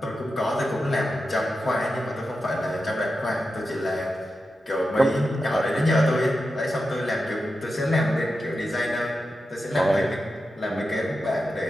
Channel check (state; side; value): normal; both; correlation 0.90